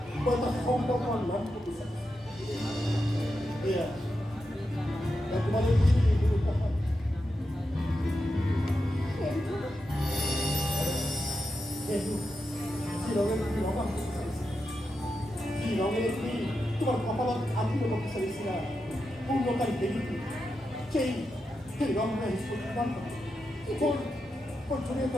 তোমার কপালত আত্মীয় করতে চাইছিলা পূর্ণকারী দেবীকে সেই রঙটা ছড়িয়ে তো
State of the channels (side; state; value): both; normal; correlation 0.88